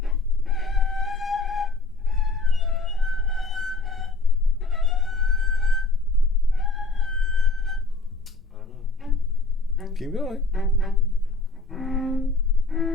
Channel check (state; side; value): quieter; right; 3.4 dB